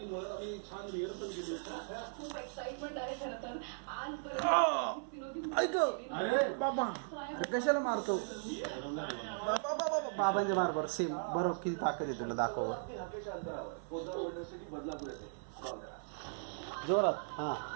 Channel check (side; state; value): left; silent; 53 dB below the other